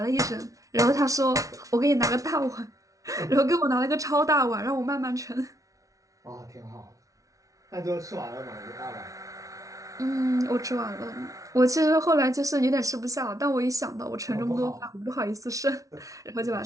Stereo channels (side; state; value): left; late; 0.17 ms